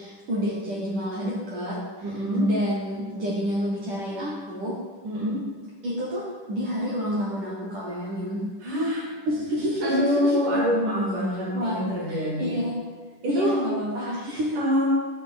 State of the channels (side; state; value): left; late; 10 ms